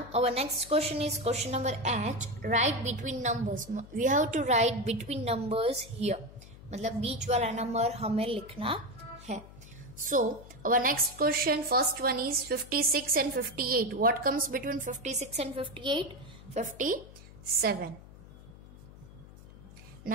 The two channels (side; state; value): left; noise; hum, 19 dB below the sound